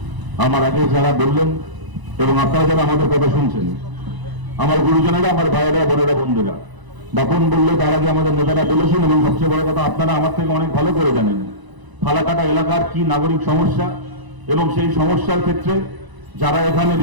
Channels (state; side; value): late; left; 1.0 ms